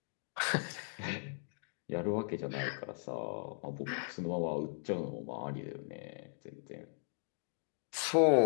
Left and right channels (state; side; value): silent; right; digital silence